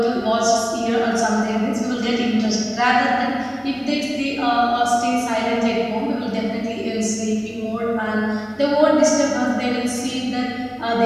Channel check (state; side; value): identical; both; correlation 1.00